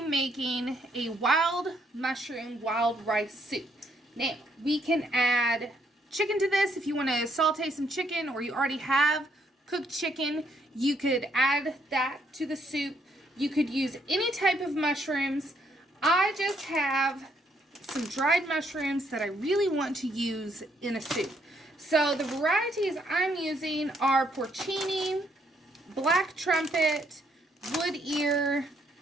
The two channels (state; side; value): normal; both; correlation 0.71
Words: a wild mushroom wild rice soup. Now we can add chicken to this if you want to saute some chicken, or you already have cooked chicken. You could add that to the soup. You could use any type of mushrooms. I just have some dried mushrooms that I really want to use in a soup. So the varieties I'm using are porcini, black trumpet, wood ear,